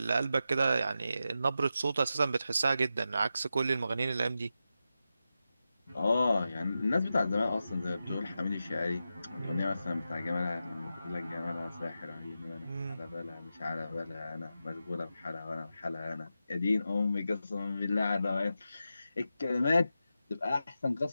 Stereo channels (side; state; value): both; inverted; correlation -0.90